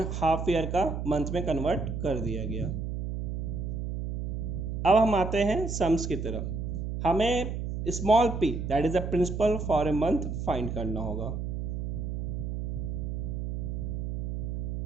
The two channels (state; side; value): noise; right; hum, 3 dB below the sound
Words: ईयर का मंथ में कन्वर्ट कर दिया गया। अब हम आते हैं सम्स की तरफ। हमें small P that is the principal for a month find करना होगा।